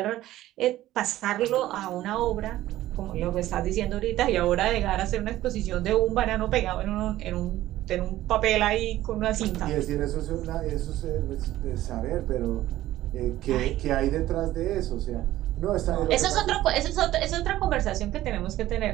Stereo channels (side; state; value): left; quieter; 14.8 dB